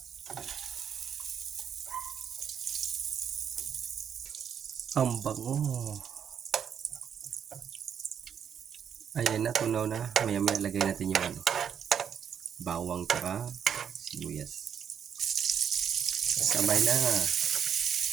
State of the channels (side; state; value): left; quieter; 8.0 dB